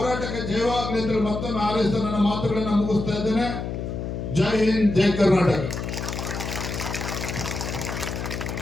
ಜಯವಾಗಲಿ ಅಂತೇಳಿ ಮತ್ತೊಮ್ಮೆ ಹಾರೈಸ್ತಾ ನನ್ನ ಮಾತುಗಳನ್ನು ಮುಗಿಸ್ತಾ ಇದ್ದೇನೆ. ಜೈ ಹಿಂದ್, ಜೈ ಕರ್ನಾಟಕ.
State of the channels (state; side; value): noise; left; hum, 5 dB below the sound